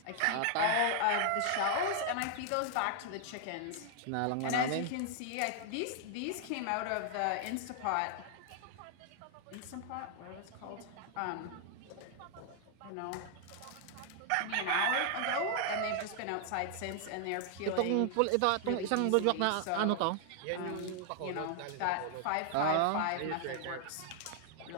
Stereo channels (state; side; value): different; both; correlation 0.00